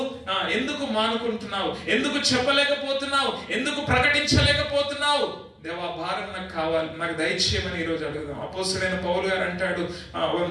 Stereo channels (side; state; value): both; identical; correlation 1.00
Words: ఎందుకు మానుకుంటున్నావు? ఎందుకు చెప్పలేకపోతున్నావు? ఎందుకు ప్రకటించలేకపోతున్నావు? దేవా, భారం నాకు కావాలి, నాకు దయచేయమని ఈరోజు అడుగుదాం. అపోస్తలుడైన పౌలు గారు అంటాడు